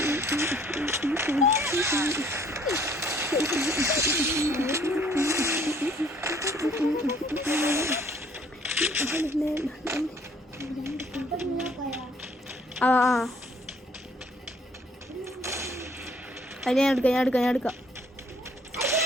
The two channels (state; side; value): normal; both; correlation 0.60